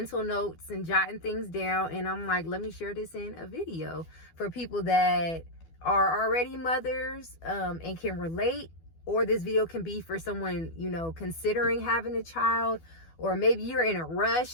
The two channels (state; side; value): late; right; 12 ms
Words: notes and jotting things down, and I'm like, let me share this in a video for people that are already mothers and can relate, or this video can be for someone, considering having a child, or maybe you're in a